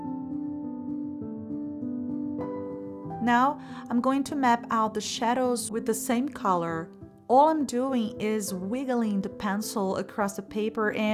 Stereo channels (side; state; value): both; identical; correlation 1.00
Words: Now I'm going to map out the shadows with the same color. All I'm doing is wiggling the pencil across the paper